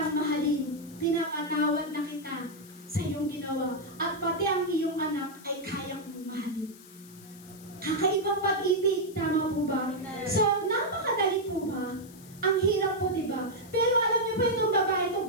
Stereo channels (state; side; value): noise; left; hiss, 21 dB below the sound